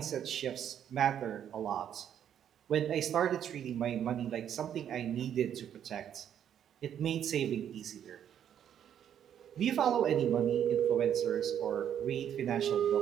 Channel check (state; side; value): quieter; left; 9.5 dB